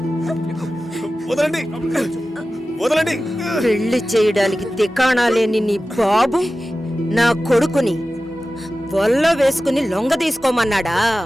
వదలండి, వదలండి. పెళ్లి చేయడానికి తికాణా లేని నీ బాబు నా కొడుకుని వల్ల వేసుకుని లొంగ తీసుకోమన్నాడా?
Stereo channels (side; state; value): both; normal; correlation 0.95